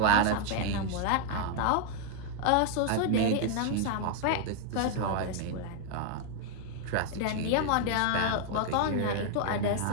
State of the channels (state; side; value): different; both; correlation 0.00